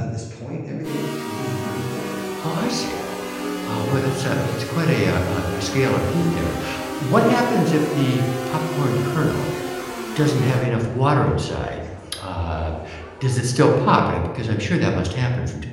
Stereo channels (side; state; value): both; identical; correlation 1.00